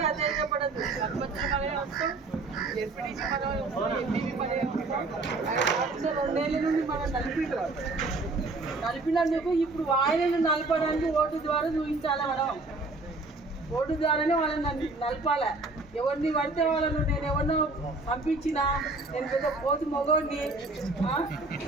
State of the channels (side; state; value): left; quieter; 3.4 dB